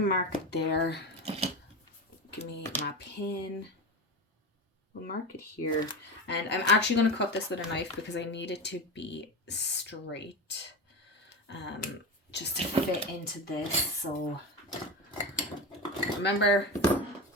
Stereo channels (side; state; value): both; normal; correlation 0.23